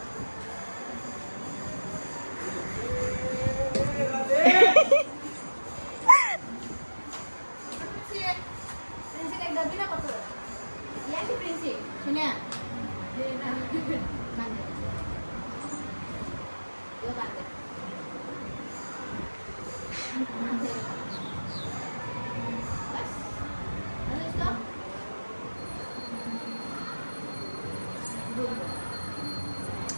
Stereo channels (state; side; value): inverted; both; correlation -1.00